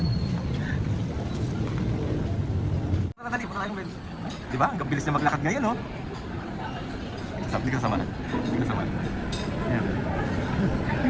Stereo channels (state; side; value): identical; both; correlation 1.00